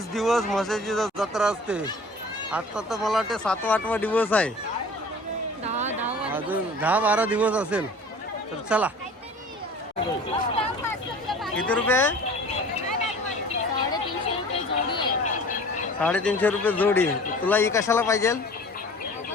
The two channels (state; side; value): normal; both; correlation 0.44